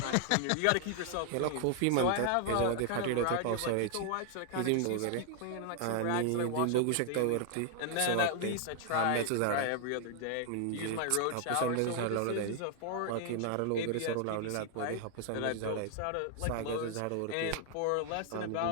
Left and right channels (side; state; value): both; different; correlation 0.00